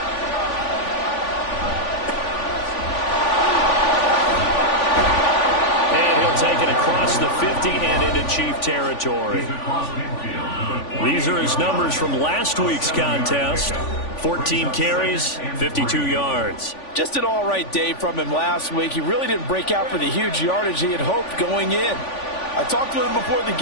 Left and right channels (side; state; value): right; late; 3.5 ms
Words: And he'll take it across the 50 and into Chief territory. These are his numbers from last week's contest. 14 carries, 52 yards. Just an all-right day from him last week. He really didn't break out for the huge yardage he had hoped going in. I talked to him before the